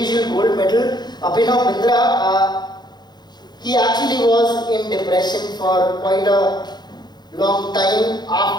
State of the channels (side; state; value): right; late; 0.21 ms